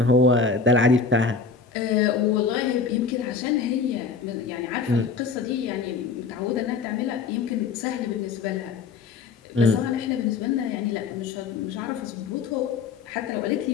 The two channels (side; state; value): right; quieter; 5.0 dB